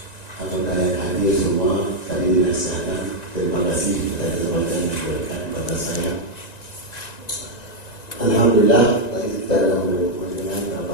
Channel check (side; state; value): right; late; 1.9 ms